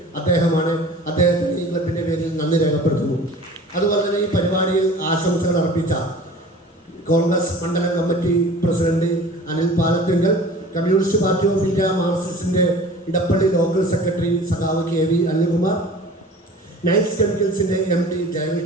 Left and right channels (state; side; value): normal; both; correlation 0.43